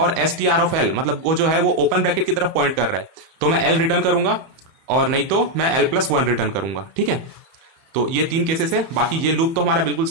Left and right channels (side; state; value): left; late; 31 ms